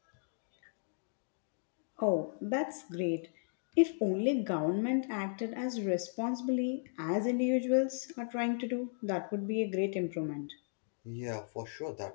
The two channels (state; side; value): silent; right; digital silence